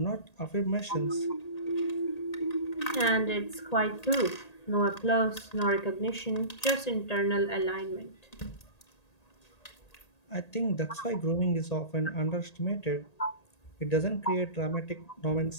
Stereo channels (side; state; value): right; late; 1.8 ms